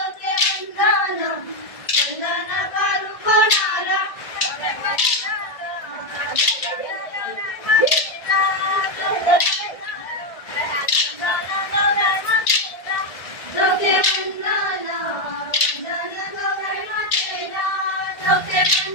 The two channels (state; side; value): late; right; 1.6 ms